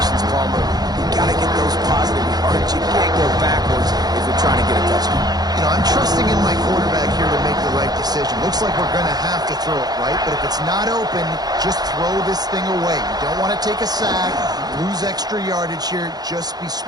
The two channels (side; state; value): left; late; 0.19 ms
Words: Palmer. You got to get those positive yards. You can't go backwards if you're trying to get a touchdown. You know, I'm trusting in my quarterback here to make the right decision. Looks like we're going to have to throw it, right? But if it's not open, just throw this thing away. You don't want to take a sack, lose extra yardage here. Just be